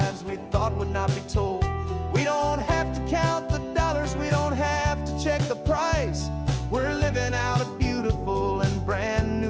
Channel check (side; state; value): both; identical; correlation 1.00